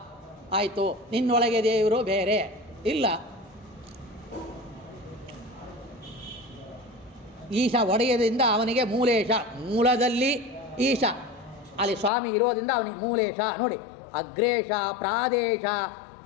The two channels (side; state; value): right; drops out; at 12.1 s